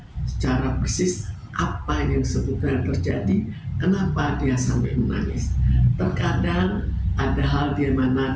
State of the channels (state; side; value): identical; both; correlation 1.00